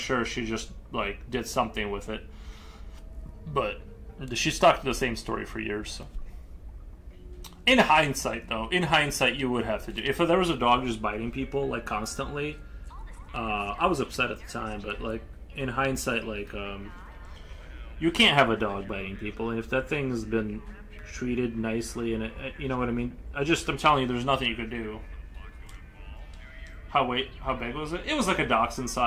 she just like did something with it, but she stuck to the same story for years. So. In hindsight, you would have to do. If there was a dog just biting people like constantly, I was upset at the time. But like in hindsight, like you can't have a dog biting people. And if that thing has been treated nicely, and you know what I mean. I'm telling you, there's nothing you could do. How big was it? It was like a dachshund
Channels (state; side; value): identical; both; correlation 1.00